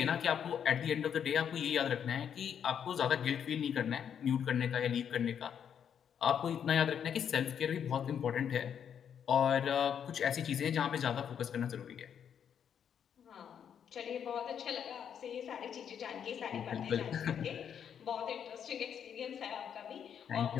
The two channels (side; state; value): right; quieter; 8.3 dB